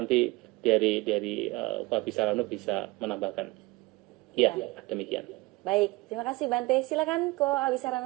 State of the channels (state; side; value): quieter; left; 22.3 dB